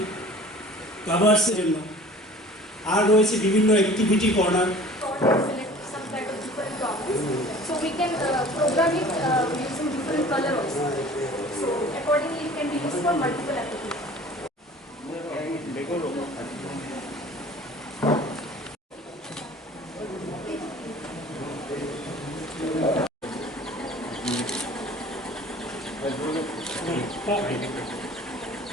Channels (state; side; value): normal; both; correlation 0.46